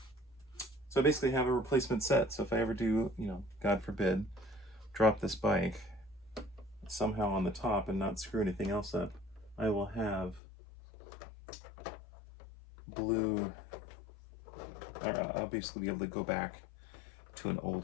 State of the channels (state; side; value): drops out; right; at 10.4 s